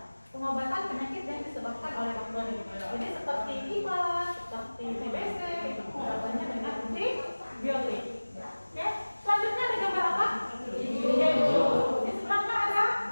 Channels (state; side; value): inverted; both; correlation -1.00